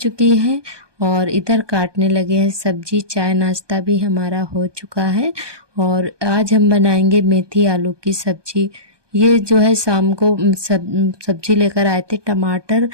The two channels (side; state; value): left; late; 1.2 ms